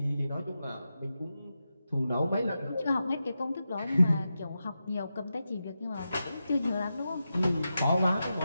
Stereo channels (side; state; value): both; inverted; correlation -0.90